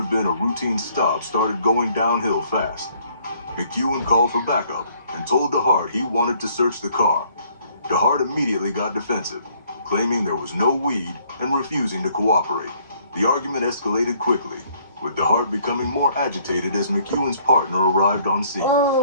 been a routine stop started going downhill fast. McEwen called for backup and told DeHart he wanted to search the car. DeHart immediately got defensive, claiming there was no weed and refusing to cooperate. The argument escalated quickly, with DeHart becoming more agitated as McEwen's partner arrived on scene.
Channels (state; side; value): inverted; both; correlation -0.63